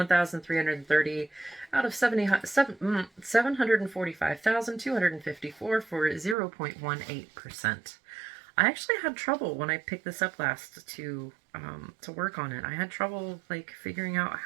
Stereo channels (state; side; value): drops out; left; at 6.4 s